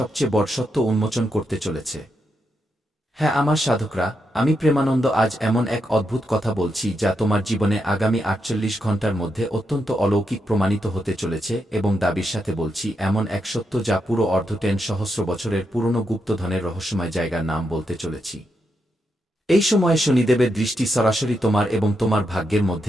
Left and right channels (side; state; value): both; normal; correlation 0.83